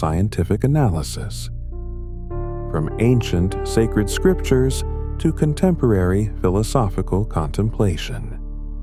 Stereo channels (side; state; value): both; identical; correlation 1.00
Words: analysis, from ancient sacred scriptures to contemporary philosophical contemplation.